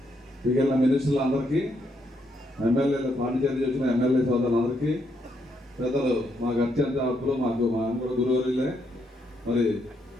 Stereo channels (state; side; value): normal; both; correlation 0.76